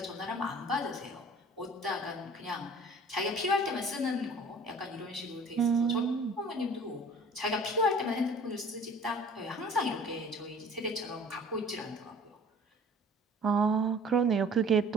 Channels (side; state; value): both; normal; correlation 0.48